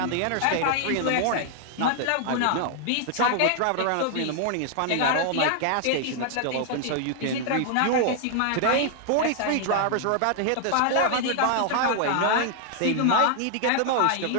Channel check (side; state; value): both; different; correlation 0.00